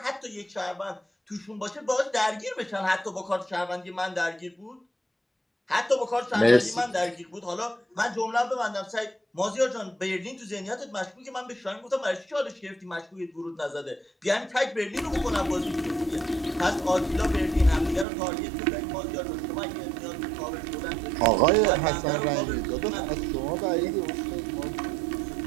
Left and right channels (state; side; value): drops out; left; at 18.1 s